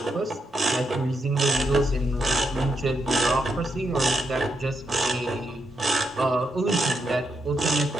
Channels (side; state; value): both; normal; correlation 0.81